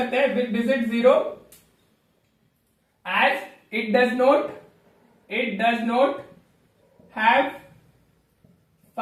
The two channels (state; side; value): identical; both; correlation 1.00